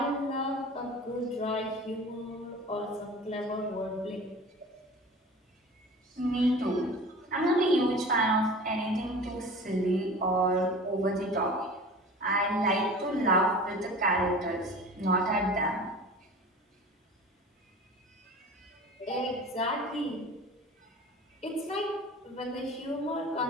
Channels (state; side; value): normal; both; correlation 0.39